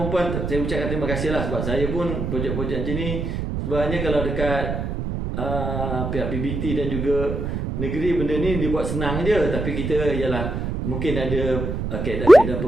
saya ucapkan terima kasih lah. Sebab saya pun projek-projek macam ni sebenarnya kalau dekat pihak PBT dan juga negeri, benda ni dibuat senang je. Tapi kita ialah mungkin ada kaedah-kaedah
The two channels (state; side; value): noise; right; rumble, 3 dB below the sound